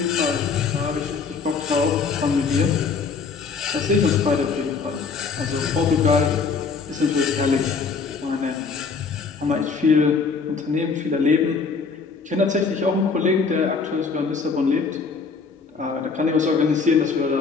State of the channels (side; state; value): right; quieter; 5.0 dB